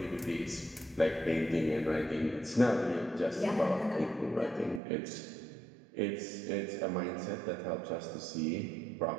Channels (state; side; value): drops out; left; at 4.8 s